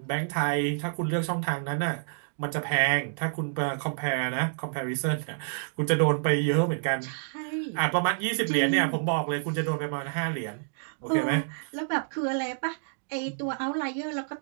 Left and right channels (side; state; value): left; silent; digital silence